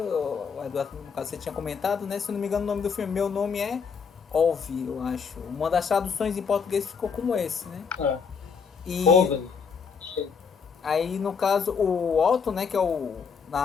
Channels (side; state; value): right; quieter; 6.0 dB